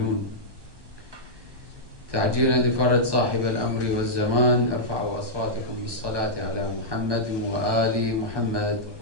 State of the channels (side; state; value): left; late; 1.2 ms